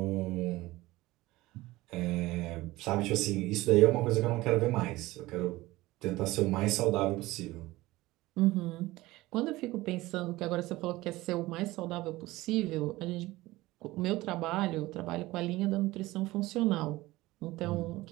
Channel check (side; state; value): left; quieter; 18.8 dB